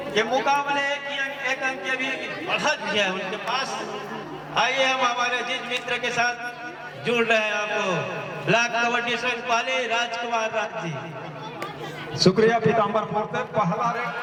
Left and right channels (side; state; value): both; identical; correlation 1.00